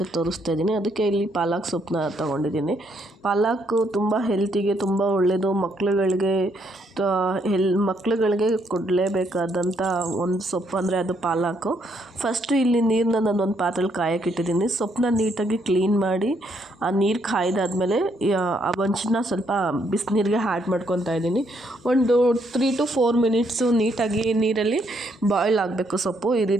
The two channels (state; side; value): normal; both; correlation 0.73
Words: ತೋರಿಸ್ತಾ ಇದ್ದೀನಿ. ಅದಕ್ಕೆ ಇಲ್ಲಿ ಪಾಲಕ್ ಸೊಪ್ಪನ್ನ ತೊಗೊಂಡಿದ್ದೀನಿ. ಪಾಲಕ್ಕು ತುಂಬ ಹೆಲ್ತಿಗೆ ತುಂಬ ಒಳ್ಳೆಯದು. ಮಕ್ಳುಗಳಿಗೆ ಕೊಡಲೇಬೇಕಾದಂಥ ಒಂದು ಸೊಪ್ಪು ಅಂದರೆ ಅದು ಪಾಲಕ್ಕು. ಫಸ್ಟು ಇಲ್ಲಿ ನೀರನ್ನ ನಾನೊಂದು ಪಾತ್ರೆಯಲ್ಲಿ ಕಾಯಕ್ಕಿಟ್ಟಿದ್ದೀನಿ. ಸೊಪ್ಪನ್ನ ನೀಟಾಗಿ ಕ್ಲೀನ್ ಮಾಡಿ ಆ ನೀರು ಕಾಯ್ದಾದ್ಮೇಲೆ ಆ ಒಂಚನ್ನ ಸ್ವಲ್ಪ ಬಿಸಿನೀರಿಗೆ ಆ್ಯಡ್ ಮಾಡ್ಕೊತಾ ಇದ್ದೀನಿ. ಒಂದು 3 to 4 ಮಿನಿಟ್ಸು ನೀಟಾಗಿ ನೀರಲ್ಲಿ ಬಾಯ್ಲ್ ಆಗಬೇಕು ಸೊಪ್ಪು. ಈ